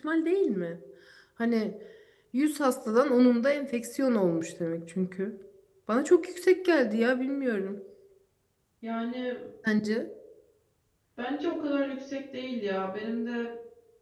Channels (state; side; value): identical; both; correlation 1.00